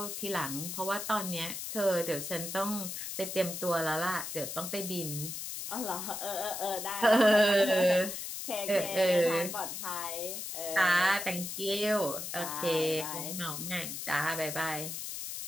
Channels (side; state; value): left; noise; hiss, 6 dB below the sound